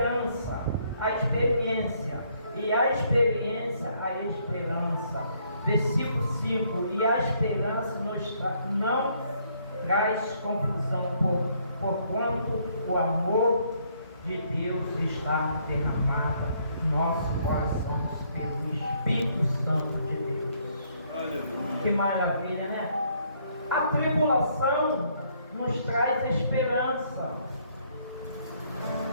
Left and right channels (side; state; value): both; inverted; correlation -0.68